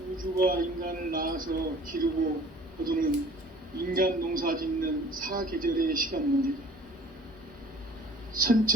우주가 인간을 낳아서 기르고 거두는 인간 농사 짓는 사계절의 시간 문제다.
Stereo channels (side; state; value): both; normal; correlation 0.50